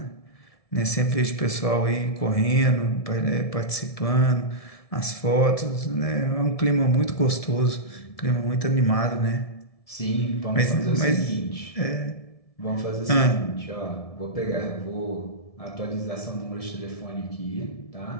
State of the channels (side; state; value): right; late; 1.7 ms